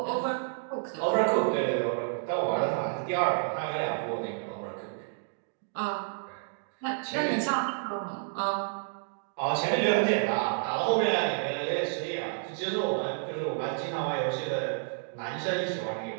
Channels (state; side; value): silent; left; digital silence